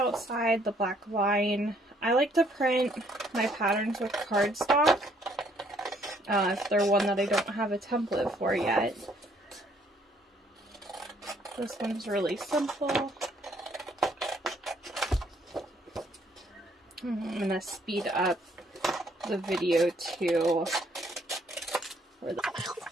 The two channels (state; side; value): normal; both; correlation 0.65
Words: the black line. I like to print my patterns with cardstock if they're one that I don't have a template for yet. This one's really simple. I'm going to speed up the video too.